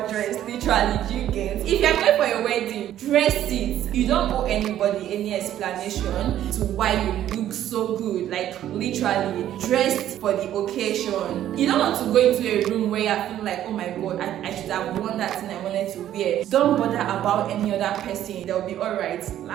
to dress. Literally, do you get? If you're going for your wedding, dress it. You don't owe anybody any explanation to why you look so good. Like literally, dressed for the occasion. You don't want to go into a room where you're feeling like, oh my god, I should have worn that thing I wanted to wear. Don't bother about any other person. They'll be alright.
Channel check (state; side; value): quieter; left; 11.8 dB